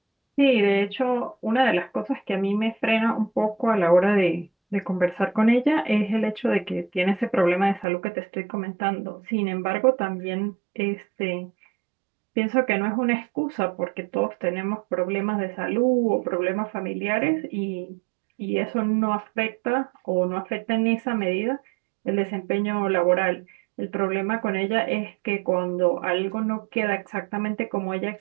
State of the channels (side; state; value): left; drops out; at 7.9 s